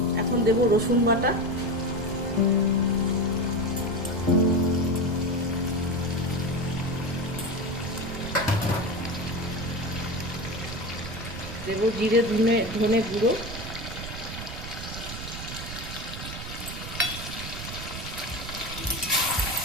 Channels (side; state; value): right; noise; rumble, 8 dB below the sound